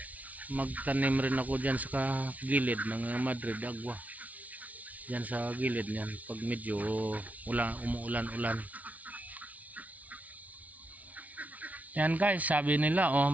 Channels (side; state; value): left; late; 0.071 ms